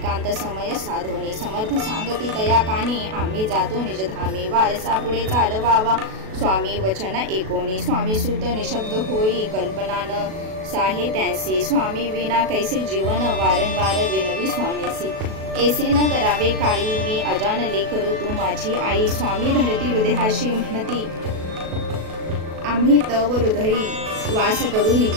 समय साधोनी. समर्थ सांगती तया कानी आम्ही जातो निजधामी. वारसा पुढे चालवावा स्वामी वचन एकोणी. स्वामी सूत निशब्द होई कल्पना न साहे त्यांसी. स्वामी विना कैसे जीवन वारंवार विनवी स्वामीसी. ऐसे न करावे काही मी अजान लेकरू तू माझी आई. स्वामी धरती हृदयाशी म्हणती आम्ही तव हृदयी वास करू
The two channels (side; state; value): left; late; 37 ms